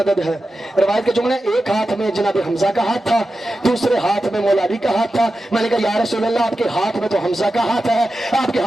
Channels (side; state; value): both; normal; correlation 0.92